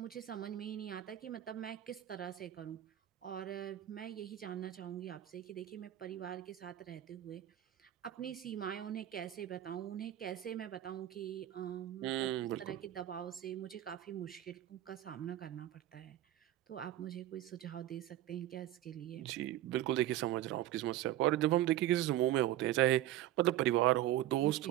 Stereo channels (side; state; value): left; quieter; 13.3 dB